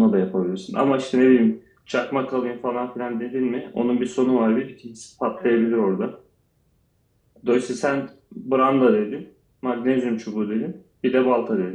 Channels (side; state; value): both; identical; correlation 1.00